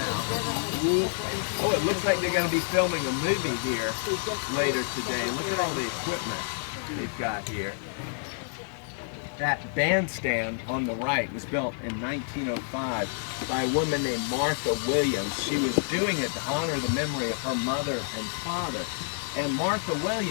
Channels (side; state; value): right; silent; digital silence